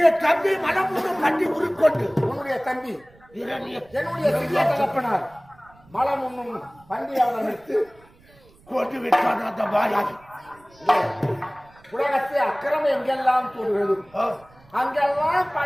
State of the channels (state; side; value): noise; right; rumble, 28 dB below the sound